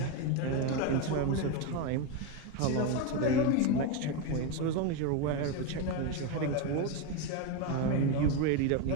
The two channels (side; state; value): both; different; correlation 0.03